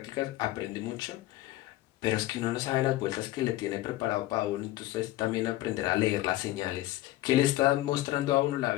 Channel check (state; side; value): quieter; right; 16.5 dB